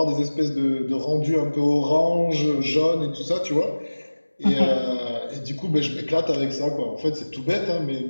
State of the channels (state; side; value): inverted; both; correlation -1.00